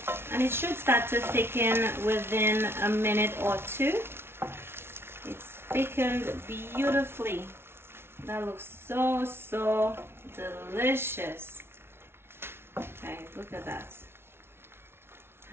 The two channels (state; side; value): late; left; 0.12 ms